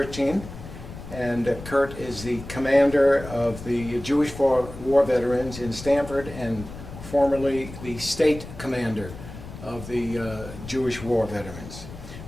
And Kurt is the commander of the Jewish War Veterans in Stamford and formerly the state commander of the Jewish War Veterans.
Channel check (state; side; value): noise; left; rumble, 13 dB below the sound